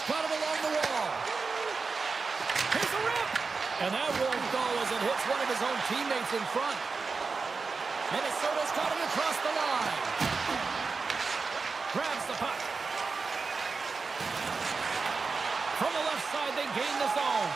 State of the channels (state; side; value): quieter; left; 4.5 dB